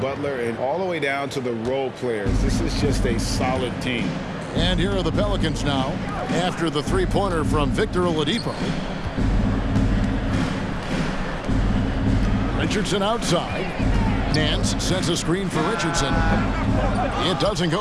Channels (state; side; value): identical; both; correlation 1.00